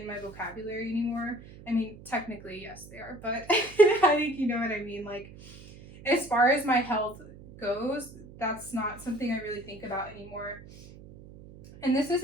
my vocabulary anymore. I mean, technically, yes, they are, but I think you know what I mean. Like, as far as my health goes, that's not something I really think about anymore. And this has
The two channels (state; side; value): noise; right; hum, 19 dB below the sound